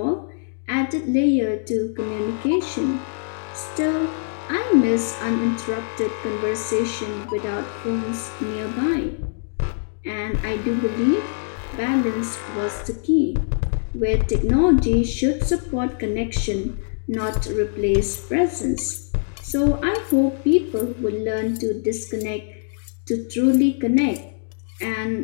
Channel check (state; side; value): silent; right; digital silence